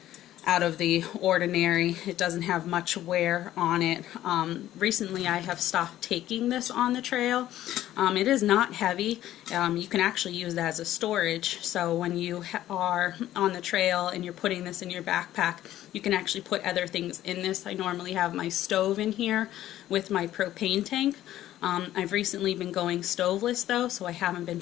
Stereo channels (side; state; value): right; quieter; 13.4 dB